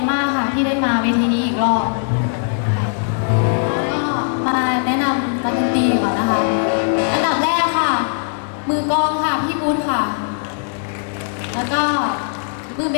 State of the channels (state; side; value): silent; right; digital silence